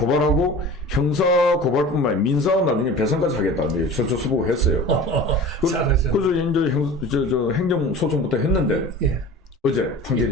형사 고발뿐만 아니라 민사 나중에 배상까지 하겠다. 이제 서초서부가 했어요. 잘하죠. 그래서 이제 행정소송부터 했는데 예. 어제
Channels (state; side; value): normal; both; correlation 0.38